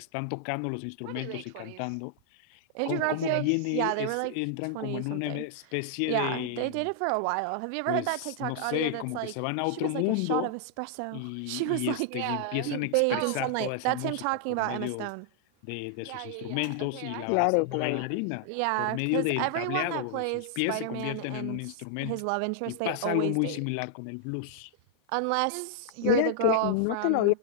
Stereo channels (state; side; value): different; both; correlation -0.01